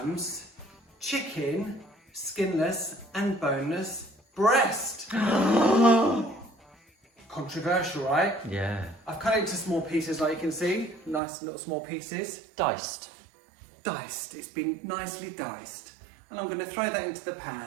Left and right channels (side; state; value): left; drops out; at 11.2 s